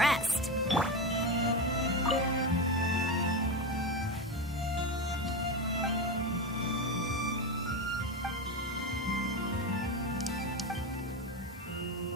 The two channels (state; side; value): normal; both; correlation 0.17